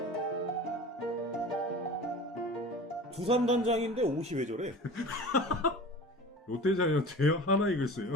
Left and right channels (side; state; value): both; normal; correlation 0.38